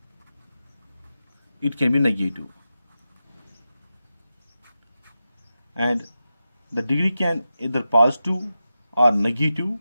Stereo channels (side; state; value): both; inverted; correlation -0.91